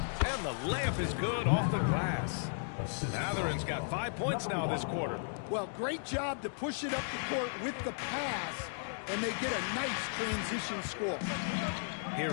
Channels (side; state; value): right; silent; digital silence